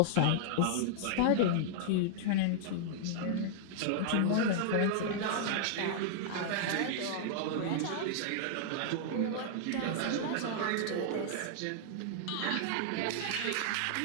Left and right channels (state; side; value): different; both; correlation -0.01